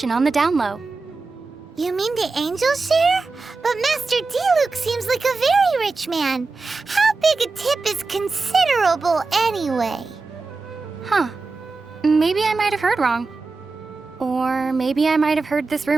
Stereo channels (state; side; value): quieter; left; 3.9 dB